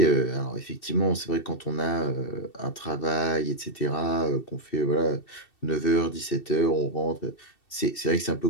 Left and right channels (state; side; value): late; right; 2.7 ms